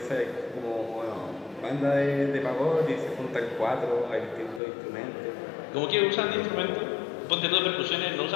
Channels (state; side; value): drops out; right; at 4.6 s